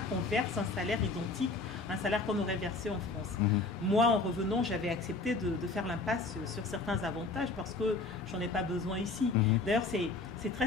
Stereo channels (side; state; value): right; quieter; 3.6 dB